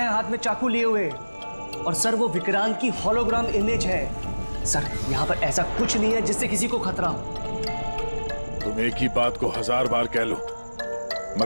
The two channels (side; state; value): both; inverted; correlation -1.00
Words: हाथ में चाकू लिए हुए। और सर वो विक्रांत की होलोग्राम इमेज है। सर यहाँ पर ऐसा कुछ नहीं है जिससे किसी को खतरा हो। तुम एक ही बात को 1000 बार कह लो,